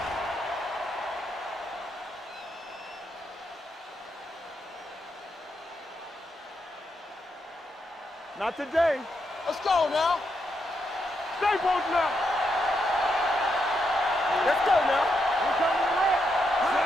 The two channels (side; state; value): both; normal; correlation 0.81